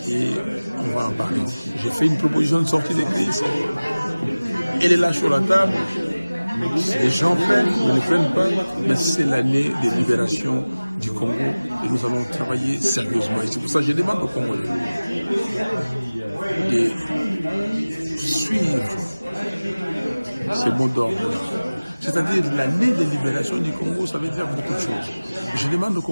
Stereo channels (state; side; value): inverted; both; correlation -0.99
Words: et on va en parler. J'ai fait une proposition de sortie de crise. Elle est là sur la table. Les gens prennent, ils ne prennent pas, mais c'est l'année de libération du Congo et nous allons travailler sérieusement. Et c'est pour ça que je demande aux Congolais de suivre ce mot d'ordre-là. C'est-à-dire l'année de libération du Congo, ça veut dire beaucoup de choses. Je demande aux